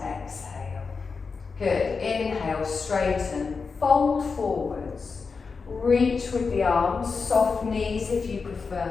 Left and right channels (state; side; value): quieter; right; 4.9 dB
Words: Good, inhale, straighten, fold forwards, reach with the arms, soft knees if you